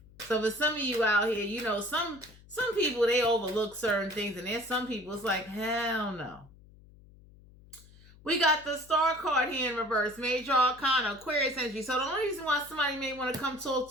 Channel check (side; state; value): left; noise; hum, 24 dB below the sound